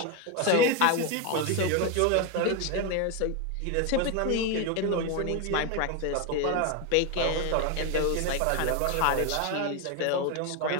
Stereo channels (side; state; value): both; different; correlation 0.02